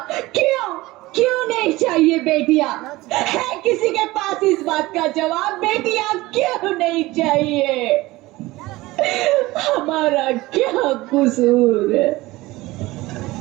क्यों नहीं चाहिए बेटियां? है किसी के पास इस बात का जवाब? बेटियां क्यों नहीं चाहिए? हमारा क्या कसूर है?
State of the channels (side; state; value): left; quieter; 19.4 dB